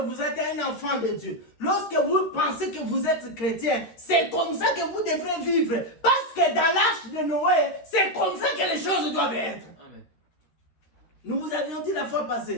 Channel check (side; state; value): right; late; 13 ms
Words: êtes un enfant de Dieu, lorsque vous pensez que vous êtes chrétien, c'est comme ça que vous devrez vivre. Parce que dans l'arche de Noé, c'est comme ça que les choses doivent être. Amen. Nous vous avions dit la fois